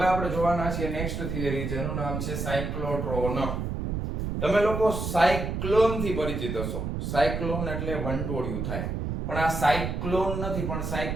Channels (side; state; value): right; noise; rumble, 3 dB below the sound